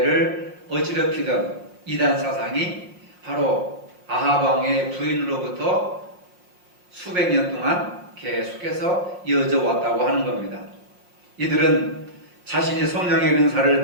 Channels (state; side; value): late; left; 5.6 ms